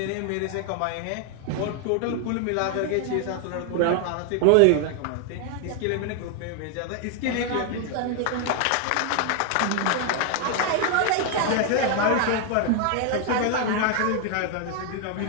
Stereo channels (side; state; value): both; different; correlation 0.00